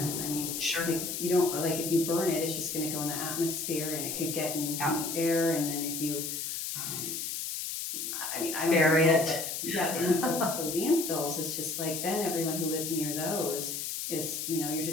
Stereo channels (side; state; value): left; noise; hiss, 4 dB below the sound